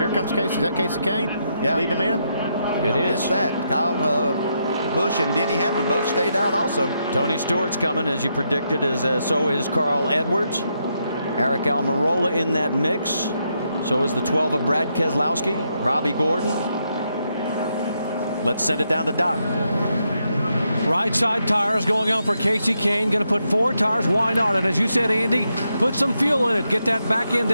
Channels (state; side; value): inverted; both; correlation -0.80